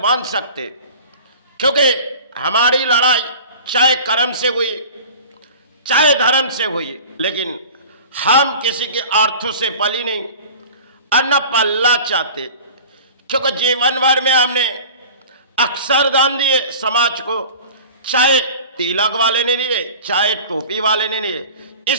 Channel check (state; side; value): inverted; both; correlation -0.40